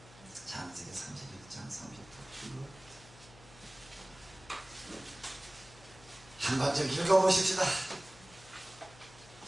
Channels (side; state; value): left; noise; hum, 21 dB below the sound